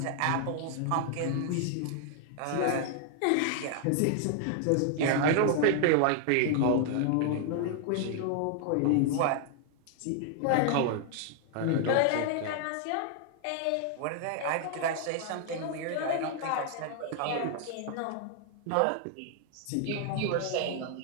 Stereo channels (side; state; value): both; different; correlation 0.00